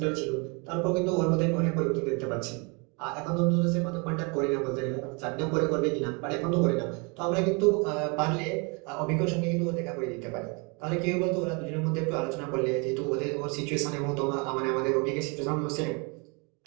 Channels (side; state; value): left; quieter; 31.8 dB